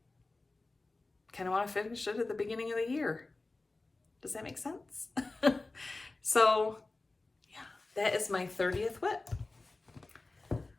kind of want to finish it at the beginning of the year. Does that make sense? So, yeah, that is my 30th WIP.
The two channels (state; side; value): quieter; right; 3.3 dB